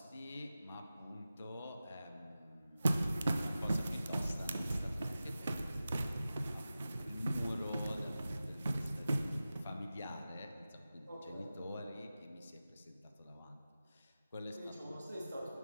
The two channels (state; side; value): inverted; both; correlation -0.94